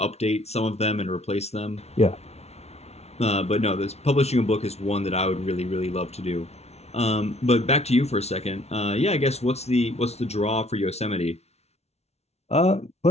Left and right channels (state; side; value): late; right; 0.31 ms